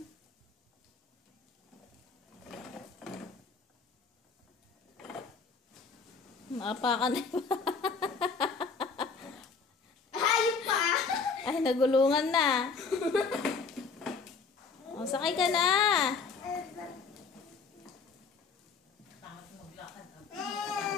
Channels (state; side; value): quieter; right; 5.1 dB